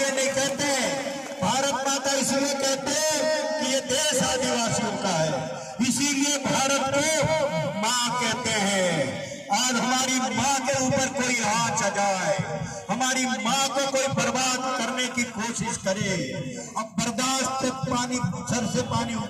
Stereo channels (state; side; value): identical; both; correlation 1.00